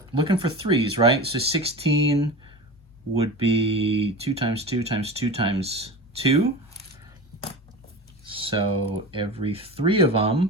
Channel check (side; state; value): both; normal; correlation 0.30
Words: for 3s, right? So 16 would be 2 times 2 times 2 times 2. So every 3 of